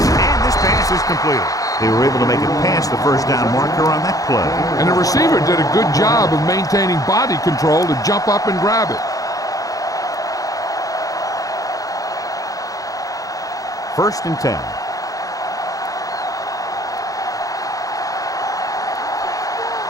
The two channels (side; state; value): right; late; 0.17 ms